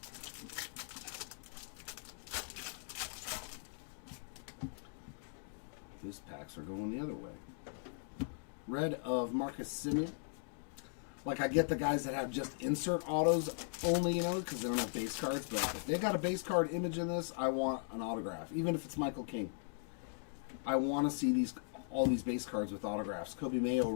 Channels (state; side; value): silent; right; digital silence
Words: These packs are going the other way. Red of Marcus Semien. Like, I get the guys that have just insert autos only, you know, because they don't have base cards. But if they got a base card image in this, I want an autograph. Even if it's Michael King. I want to see all these base cards with autographs. Kobe Mayo